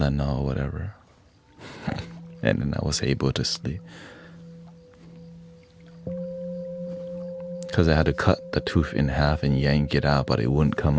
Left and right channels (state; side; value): identical; both; correlation 1.00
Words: or whatever, and then I was able to sleep. Because I had to cut the tooth in half and yank it out, but it wouldn't come